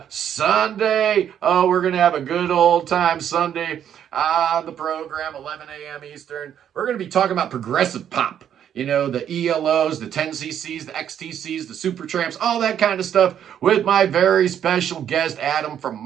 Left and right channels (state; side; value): quieter; left; 9.5 dB